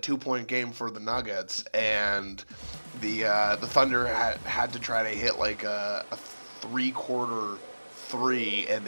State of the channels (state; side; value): inverted; both; correlation -1.00